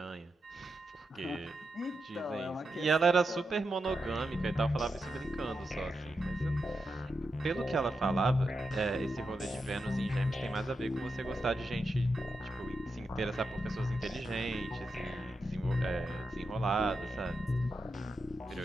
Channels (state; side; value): normal; both; correlation 0.87